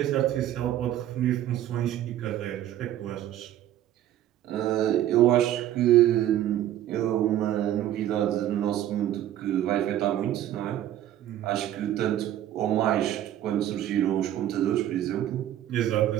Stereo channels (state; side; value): quieter; left; 12.3 dB